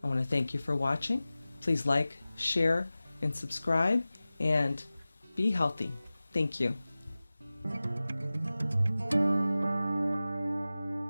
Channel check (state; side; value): inverted; both; correlation -0.97